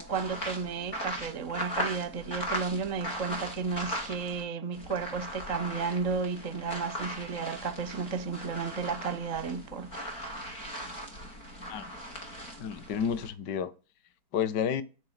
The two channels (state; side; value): late; right; 4.4 ms